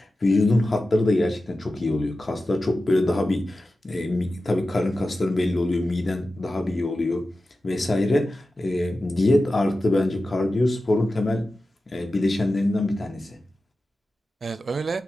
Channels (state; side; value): normal; both; correlation 0.93